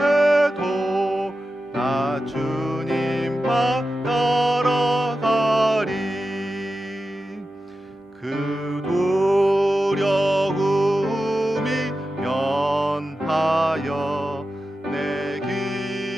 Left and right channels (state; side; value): normal; both; correlation 0.92